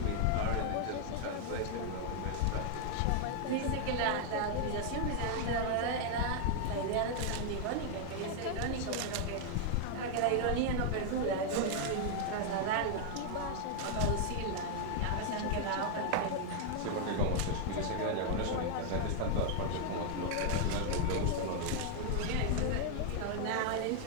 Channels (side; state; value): both; different; correlation 0.00